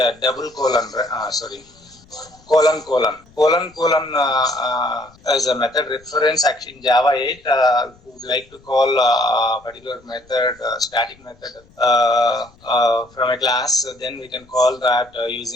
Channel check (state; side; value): noise; left; rumble, 28 dB below the sound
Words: double colon. Colon as a method reference. Actually, in Java 8, we would like to call a particular method, static method from a class. Then we can call that